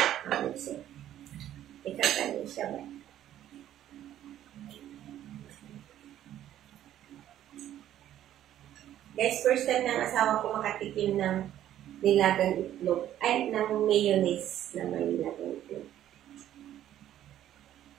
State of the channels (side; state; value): left; quieter; 11.9 dB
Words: Ikakanin siya ba? Guys, first time ng asawa ko makatikim ng nilagang itlog. Ay, ng mayonnaise na may nilagang itlog.